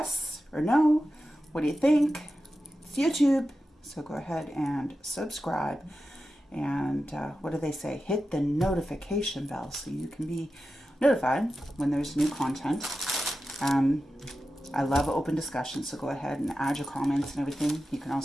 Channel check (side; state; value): both; normal; correlation 0.92